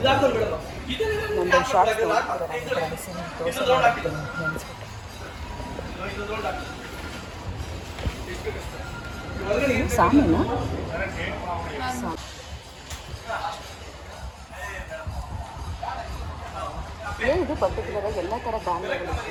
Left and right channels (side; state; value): both; identical; correlation 1.00